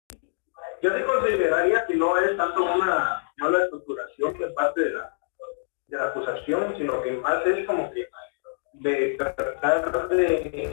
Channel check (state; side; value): silent; right; digital silence